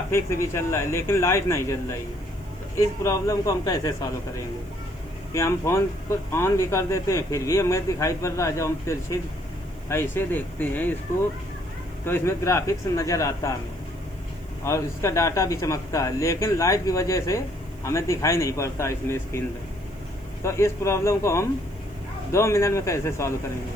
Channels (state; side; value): noise; right; hiss, 29 dB below the sound